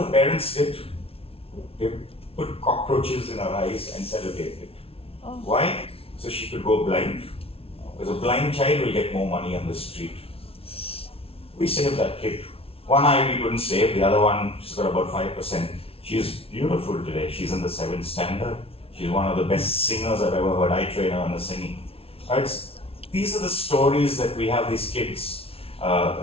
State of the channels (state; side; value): late; right; 0.27 ms